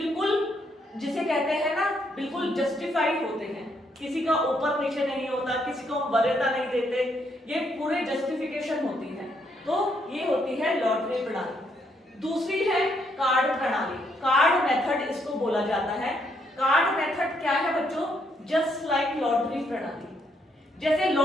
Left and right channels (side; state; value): both; normal; correlation 0.74